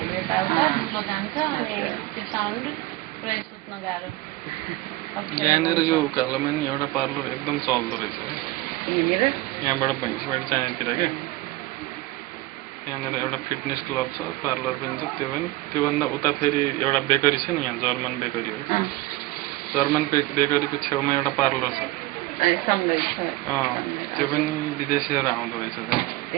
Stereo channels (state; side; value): quieter; left; 19.1 dB